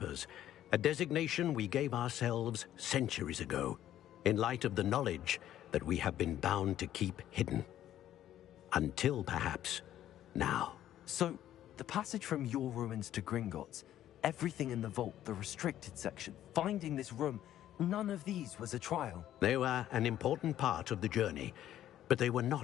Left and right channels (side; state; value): right; quieter; 12.1 dB